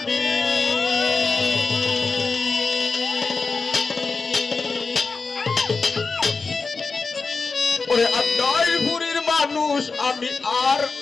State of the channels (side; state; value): right; quieter; 4.3 dB